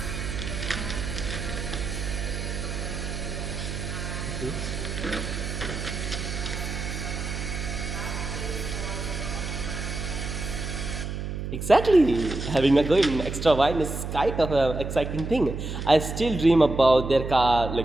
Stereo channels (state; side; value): noise; right; hum, 5 dB below the sound